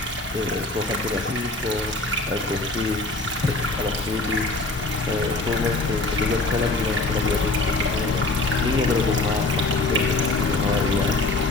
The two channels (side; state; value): right; quieter; 3.1 dB